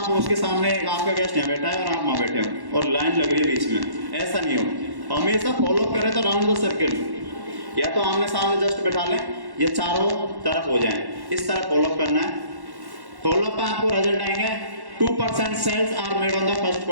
उसके सामने आपका गेस्ट यहाँ बैठा है और आप वहां बैठे हो और लाइन लग रही है बीच में, ऐसा नहीं हो। हमेशा फॉलो करें तो राउंड द सर्किल, या तो आमने सामने जस्ट बैठा लें या चारों तरफ हो जाए, इस तरह फॉलोअप करना है। फॉलोअप पे आपको रिजल्ट आएंगे 2% sales are made on the first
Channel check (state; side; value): late; left; 1.1 ms